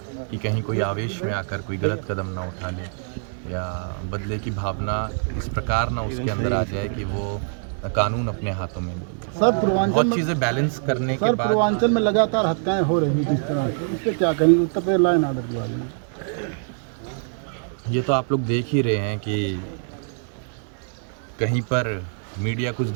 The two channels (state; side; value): silent; left; 63 dB below the other